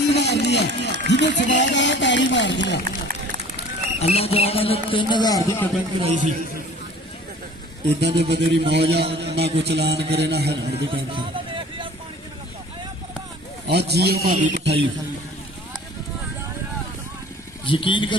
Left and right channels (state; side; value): normal; both; correlation 0.47